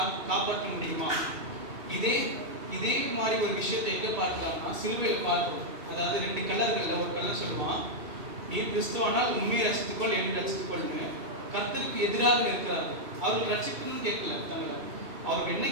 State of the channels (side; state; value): left; late; 2.3 ms